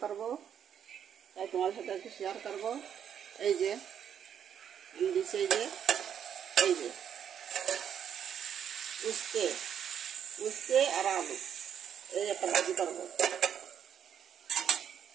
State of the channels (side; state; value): left; quieter; 8.7 dB